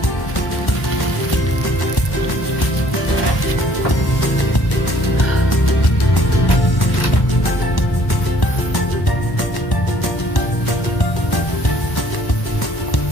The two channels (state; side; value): late; right; 1.1 ms